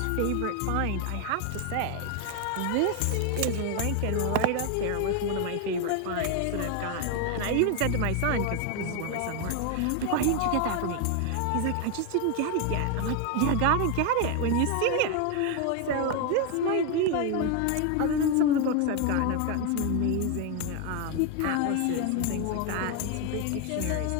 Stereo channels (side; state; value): both; different; correlation 0.01